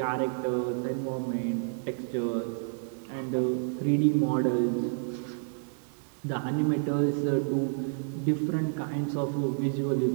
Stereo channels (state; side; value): silent; left; 58 dB below the other